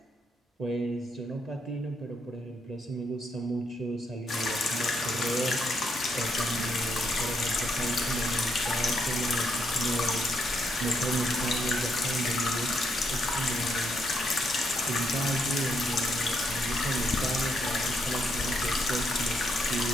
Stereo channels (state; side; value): normal; both; correlation 0.76